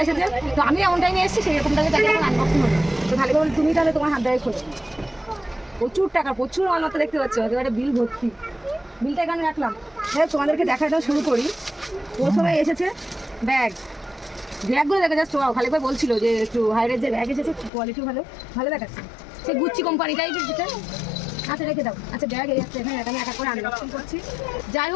এসেছে। তো আমি এমন টাইমে এসেছি, সেরকম টাইমে তাকে এখন আনবক্সিং হবে। তো খালিক ভাই তুমি তাহলে তোমার হাত দিয়ে খোলো। প্রচুর টাকা, প্রচুর মালপত্র দেখতে পাচ্ছ, একেবারে বিল ভর্তি। বিলটা এখানে রাখলাম। হ্যাঁ, তোমাদেরকে দেখাটা শুরু করি। প্রথমে এসেছে ব্যাগগুলো দেখা যাচ্ছে। খালিক ভাই বলছিল যে একটু হাই রেঞ্জের ব্যাগ এসেছে, কোয়ালিটিও ভালো দেখাচ্ছে। সে গুচ্ছি কোম্পানিটাই যেটা। আচ্ছা রেখে দাও। আচ্ছা ব্যাগ এই একটা এখানে আমি এক করে আনবক্সিং করছি। যাই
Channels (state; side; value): drops out; right; at 17.7 s